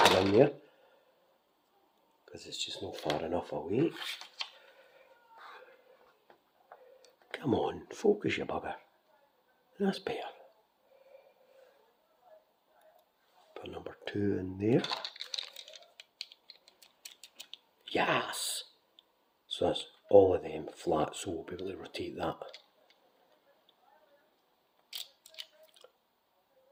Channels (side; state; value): both; identical; correlation 1.00